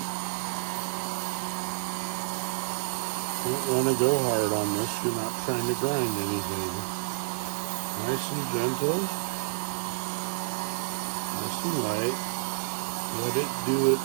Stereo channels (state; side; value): silent; left; digital silence